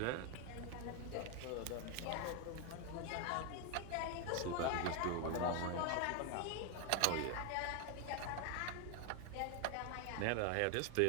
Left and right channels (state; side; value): different; both; correlation 0.01